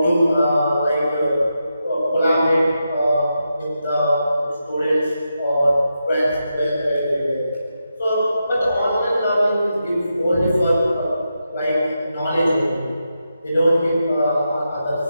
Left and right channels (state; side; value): inverted; both; correlation -0.87